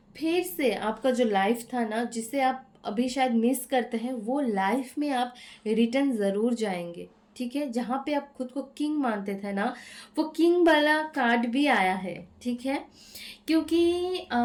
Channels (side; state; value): both; identical; correlation 1.00